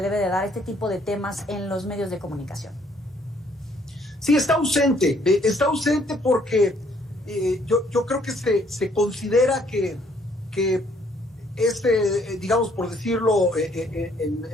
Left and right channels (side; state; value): both; normal; correlation 0.65